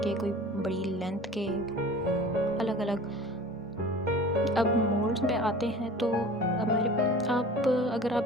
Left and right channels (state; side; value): normal; both; correlation 0.41